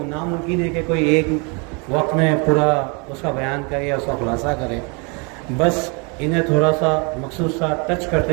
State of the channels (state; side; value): quieter; left; 32.9 dB